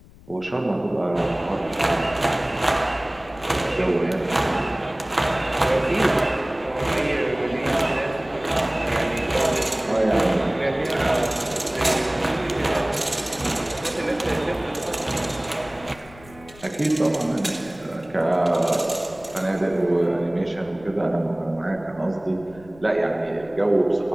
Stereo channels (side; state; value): left; noise; rumble, 22 dB below the sound